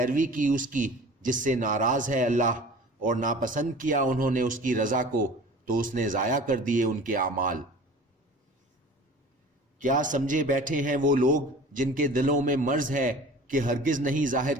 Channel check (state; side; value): normal; both; correlation 0.42